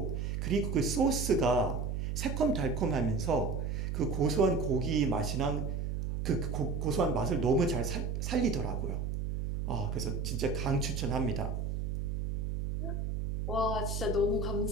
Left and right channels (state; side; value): noise; right; hum, 2 dB below the sound